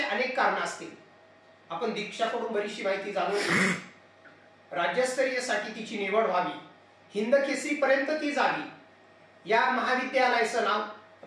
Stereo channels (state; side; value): identical; both; correlation 1.00